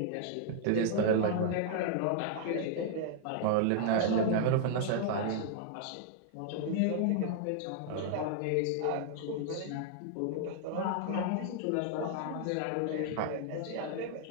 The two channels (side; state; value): both; different; correlation -0.01